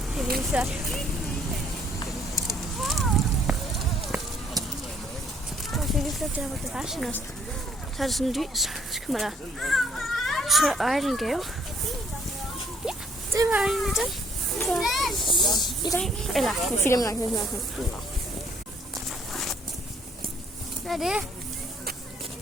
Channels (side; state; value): both; normal; correlation 0.64